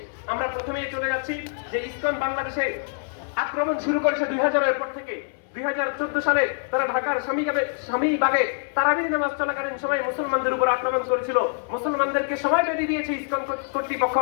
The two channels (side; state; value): right; silent; 62 dB below the other